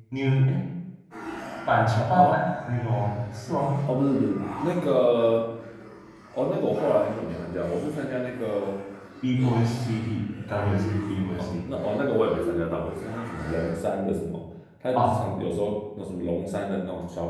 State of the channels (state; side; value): identical; both; correlation 1.00